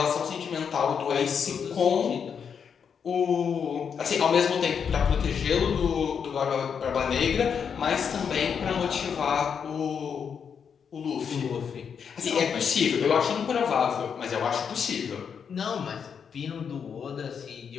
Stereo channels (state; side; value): quieter; right; 6.9 dB